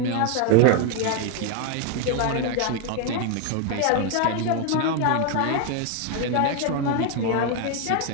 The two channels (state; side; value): different; both; correlation 0.01